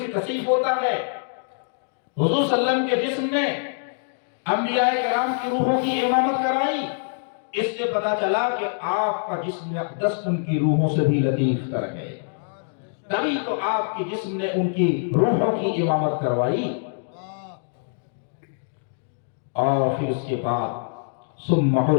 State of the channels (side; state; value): right; silent; digital silence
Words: کثیف ہوتا ہے۔ حضور صلی اللہ علیہ وسلم کے جسم نے انبیاء کرام کی روحوں کی امامت کرائی، اس سے پتا چلا کہ آپ کا جسم اقدس ان کی روحوں سے بھی لطیف تر ہے، تبھی تو آپ کے جسم نے ان کی روحوں کی امامت کروائی۔ اور پھر اس کے بعد ثم